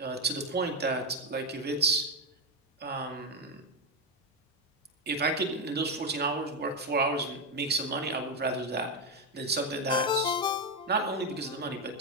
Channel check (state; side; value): normal; both; correlation 0.07